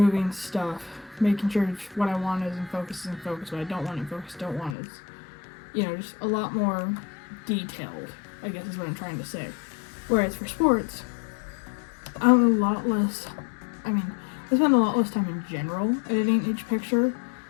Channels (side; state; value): right; drops out; at 4.8 s